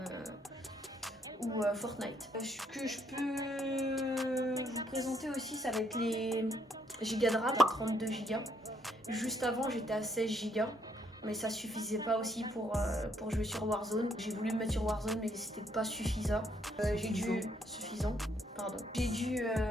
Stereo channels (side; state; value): both; normal; correlation 0.70